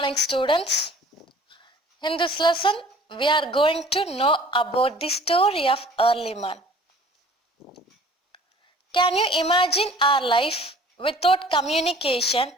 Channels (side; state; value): both; normal; correlation 0.49